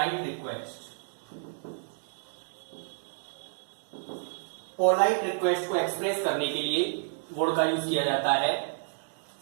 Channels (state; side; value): silent; left; digital silence